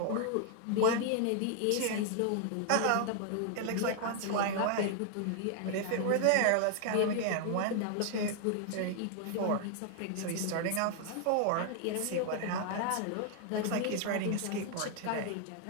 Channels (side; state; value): both; different; correlation 0.00